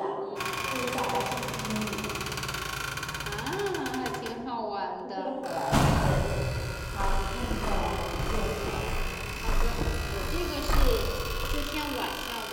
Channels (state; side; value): identical; both; correlation 1.00